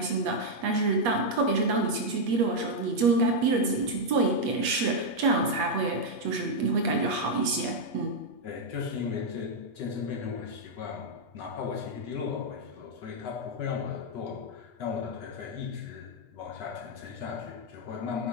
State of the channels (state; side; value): late; left; 8.4 ms